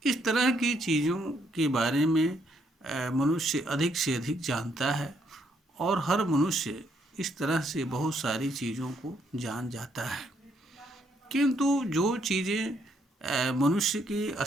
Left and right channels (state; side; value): normal; both; correlation 0.72